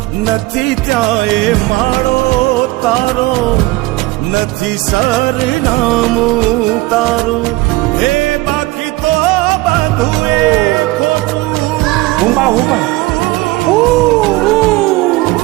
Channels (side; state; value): left; quieter; 20.4 dB